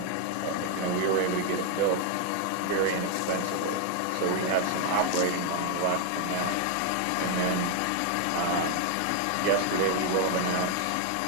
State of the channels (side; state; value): both; different; correlation 0.00